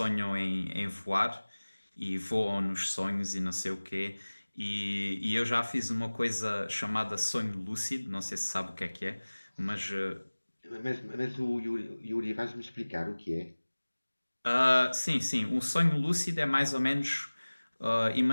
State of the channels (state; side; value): inverted; both; correlation -1.00